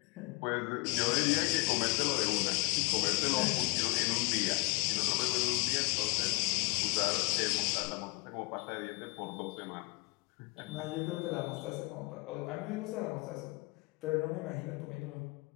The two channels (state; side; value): quieter; right; 27.1 dB